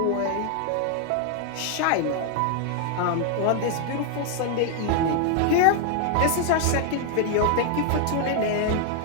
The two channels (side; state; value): both; different; correlation 0.00